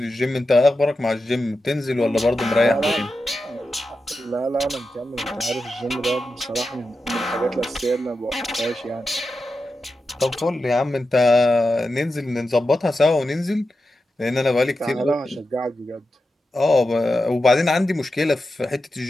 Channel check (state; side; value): normal; both; correlation 0.90